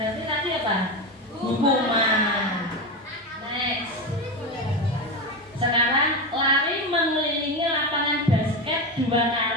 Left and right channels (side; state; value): both; normal; correlation 0.17